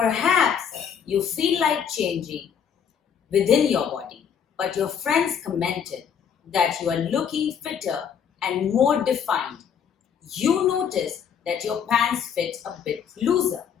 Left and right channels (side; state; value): right; quieter; 7.7 dB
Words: you feel like changing within your body, but your friends commented that you are looking fitter and more defined. You notice that your pants fit a bit looser.